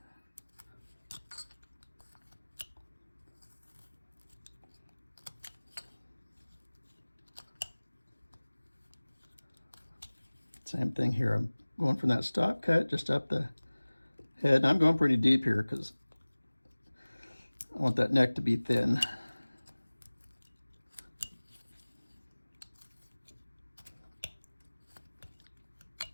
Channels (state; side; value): inverted; both; correlation -1.00